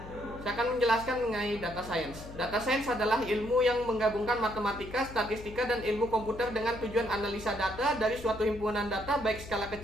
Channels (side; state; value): left; noise; hum, 14 dB below the sound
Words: Saya akan menjelaskan mengenai data science. Data science adalah ilmu yang menggabungkan matematika, statistika, dan ilmu komputer dengan tujuan analisa data dari suatu himpunan data baik skala